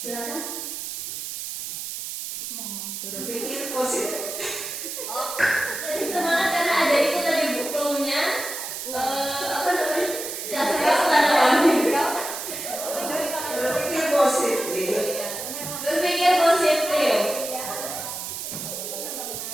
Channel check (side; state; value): right; noise; hiss, 6 dB below the sound